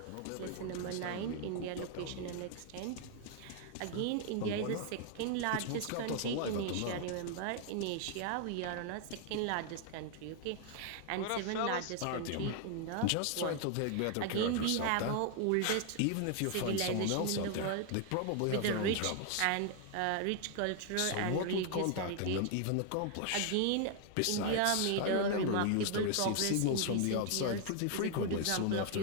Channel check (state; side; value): different; both; correlation 0.00